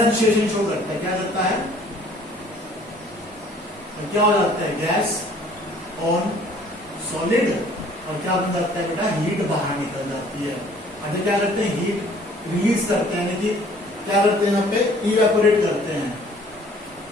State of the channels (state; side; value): normal; both; correlation 0.55